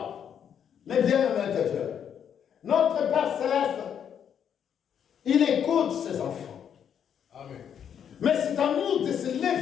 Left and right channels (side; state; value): right; quieter; 8.5 dB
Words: Mais bien aimé de Dieu, notre Père Céleste, il écoute ses enfants. Amen. Mais c'est à nous de se